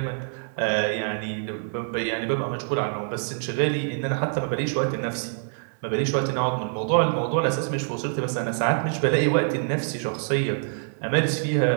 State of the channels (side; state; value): left; silent; digital silence